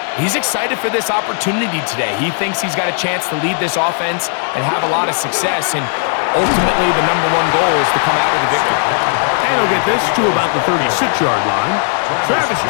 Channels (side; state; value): right; silent; 64 dB below the other